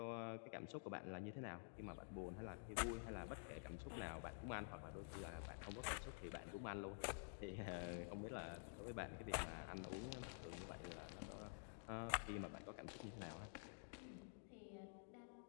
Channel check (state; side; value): silent; right; digital silence